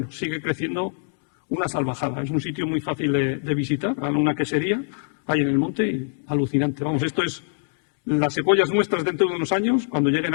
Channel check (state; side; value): silent; right; digital silence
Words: sigue creciendo una salvajada. Es un sitio muy fácil de visitar, una quesería, ahí en el monte, y alucinante. Vamos, esto es, las secuoyas nuestras dentro de unos años, cuando lleguen